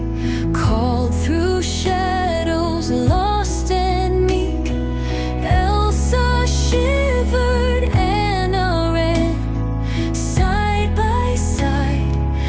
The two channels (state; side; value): identical; both; correlation 1.00